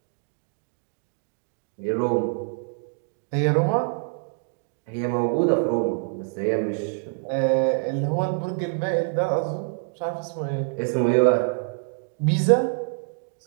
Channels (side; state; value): left; silent; digital silence